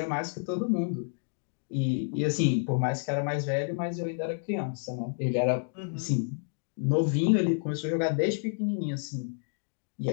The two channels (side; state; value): right; silent; digital silence